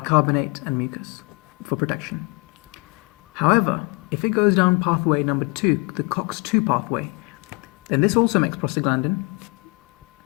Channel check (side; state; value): right; quieter; 28.4 dB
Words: and mucus for protection. However, if it goes down pathway number 2, the COX-2 pathway, then this also makes prostaglandin,